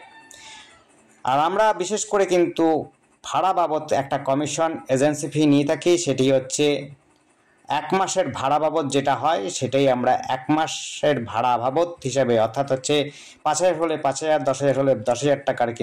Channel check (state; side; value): identical; both; correlation 1.00